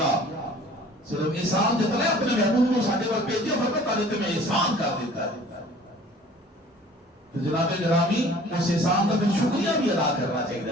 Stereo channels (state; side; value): normal; both; correlation 0.49